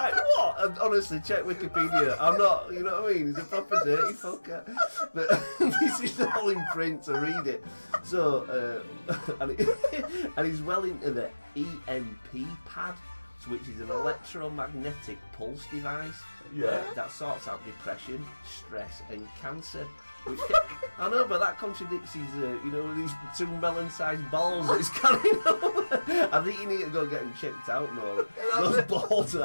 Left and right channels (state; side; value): inverted; both; correlation -1.00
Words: what? And honestly, check Wikipedia. I'm not, you know what I mean? He's a proper dirty fucker. But this is all in print, so read it. So, and he's well into the EMP pad, which is an electromagnetic pulse device that sorts out depression, stress, and cancer. I know, but that contradicts his, these 2 melon-sized balls that he's carrying over. I think you need to go get them checked out, Noel. Those balls